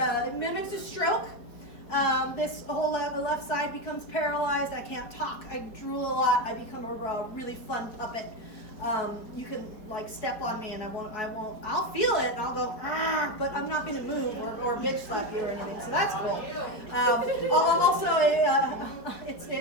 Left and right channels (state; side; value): late; right; 4.8 ms